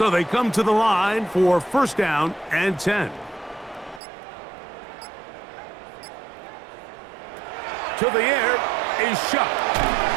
they come to the line for 1st down and 10. To the air is Shuck.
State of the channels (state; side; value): drops out; left; at 4.0 s